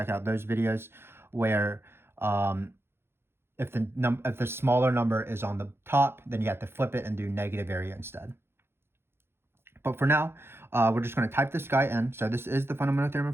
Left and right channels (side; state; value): left; late; 0.11 ms